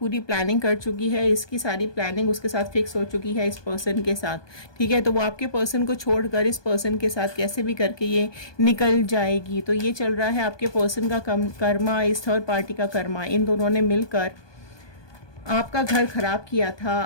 प्लानिंग कर चुकी है, इसकी सारी प्लानिंग उसके साथ फिक्स हो चुकी है इस पर्सन के साथ, ठीक है। तो वो आपके पर्सन को छोड़कर इस पर्सन के साथ कैसे भी करके ये निकल जाएगी। तो ये चल रहा है आपके पर्सन का कर्मा, इस थर्ड पार्टी का कर्मा। इन दोनों ने मिलकर आपका घर खराब किया था,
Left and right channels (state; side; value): late; right; 1.2 ms